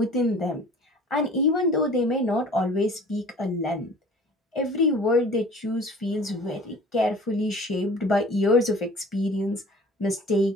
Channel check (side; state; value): both; normal; correlation 0.46